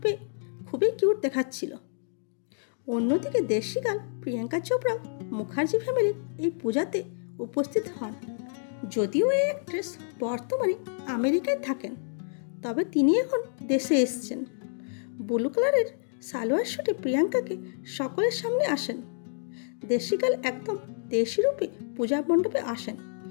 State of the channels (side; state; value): right; silent; digital silence